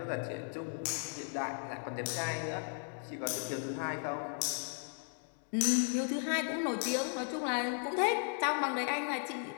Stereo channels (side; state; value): right; silent; 54 dB below the other